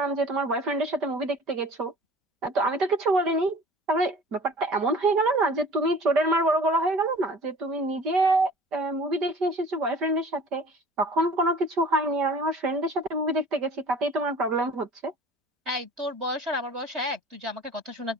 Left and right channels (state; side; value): normal; both; correlation 0.46